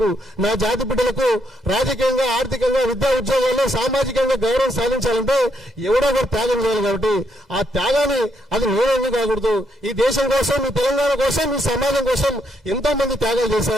నా జాతి బిడ్డలకు రాజకీయంగా, ఆర్థికంగా, విద్యా ఉద్యోగాల్లో సామాజికంగా గౌరవం సాధించాలంటే ఎవడో ఒకరు త్యాగం చేయాలి. కాబట్టి ఆ త్యాగాన్ని అది నేనేందుకు కాకూడదు. ఈ దేశం కోసం, ఈ తెలంగాణ కోసం, ఈ సమాజం కోసం ఎంతో మంది త్యాగాలు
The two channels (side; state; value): both; normal; correlation 0.75